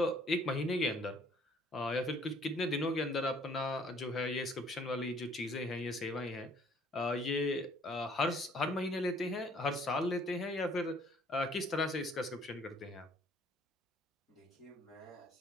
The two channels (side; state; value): both; normal; correlation 0.60